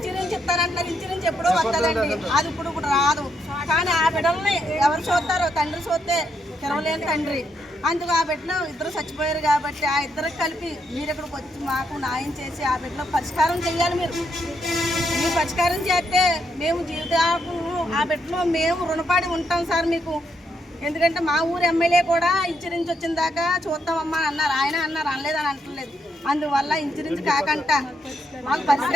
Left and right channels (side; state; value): both; normal; correlation 0.78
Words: ఇస్తారంటున్నారు. ఇన్సూరెన్స్ ఎప్పుడో వస్తుందండి, అది ఇప్పుడు రాదు. కానీ ఆ బిడ్డల్ని ఎవరు చూస్తారో, తండ్రి చూస్తే తెరవలేని తండ్రి. అందుకు ఆ బిడ్డలో ఇద్దరు చచ్చిపోయారు కాబట్టి ఆ ఇద్దరికి కలిపి మీరు ఇక్కడికి వచ్చి మాకు న్యాయం చేసి ఆ బిడ్డలో పరిష్కారం చేయాలి. మీరు పరిష్కారం చేస్తే మేము జీవితాలకు ఆ బిడ్డలో మేము రుణపడి ఉంటాం సార్ మీకు. ఎందుకంటే మా ఊరు ఎమ్మెల్యే కూడా ఇన్సూరెన్స్ వచ్చిన దాకా చూస్తామమ్మా అన్నారు. ఆయన అన్నారు, అనలేదని అంటలేదు. అందువల్ల ఇన్సూరెన్స్ కాకుండా మాకు